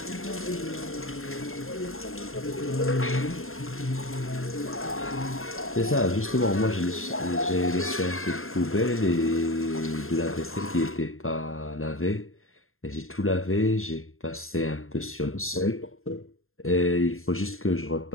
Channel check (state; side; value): late; right; 0.61 ms